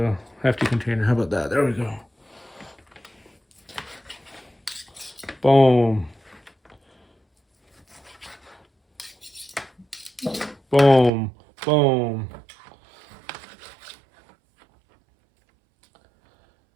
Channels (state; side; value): drops out; left; at 11.1 s